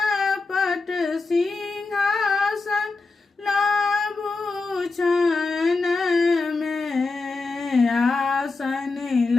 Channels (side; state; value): right; quieter; 3.8 dB